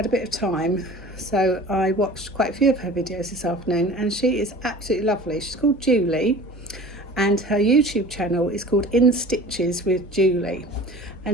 a bit of time, so I watched quite a few of her videos this afternoon, and she is absolutely lovely. She's called Julie and her YouTube channel is called In Stitches with Julie,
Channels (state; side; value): normal; both; correlation 0.41